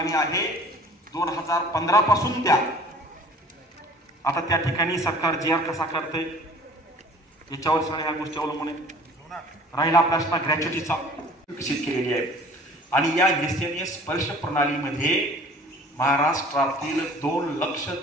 आहे 2015 पासून द्या। आता त्या ठिकाणी सरकार GR कसा करते याच्यावर सगळ्या ह्या गोष्टी अवलंबून आहे। राहिला प्रश्न ग्रॅच्युटीचा, विकसित केलेली आहे आणि या SNA स्पर्श प्रणालीमध्ये महाराष्ट्रातील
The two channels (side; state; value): both; normal; correlation 0.49